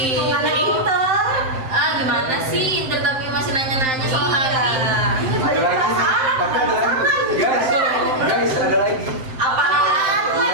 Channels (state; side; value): late; left; 7.7 ms